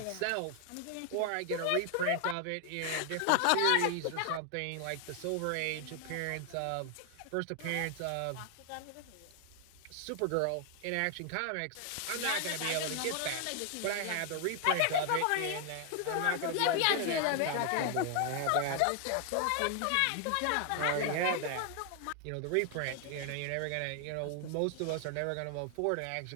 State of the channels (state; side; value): different; both; correlation 0.00